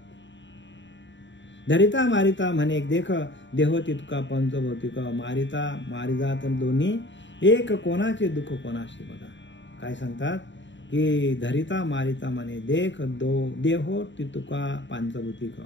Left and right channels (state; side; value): late; right; 0.54 ms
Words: धरिता मारिता म्हणे देख, देह तितका पंचभौतिक, मारिता मारिजात दोन्ही, एक कोणाचे दुःख कोणाशी. बघा काय सांगतात की धरिता मारिता म्हणे देख, देहो तितका पंचभौतिक.